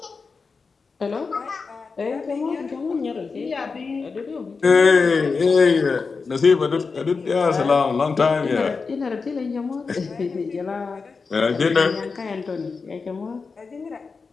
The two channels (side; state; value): right; quieter; 4.7 dB